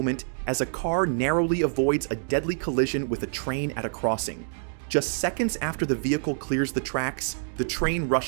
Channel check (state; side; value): silent; left; digital silence